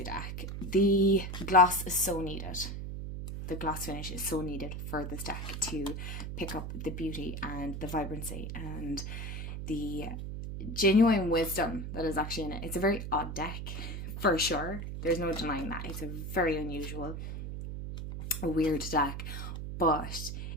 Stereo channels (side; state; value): right; noise; hum, 6 dB below the sound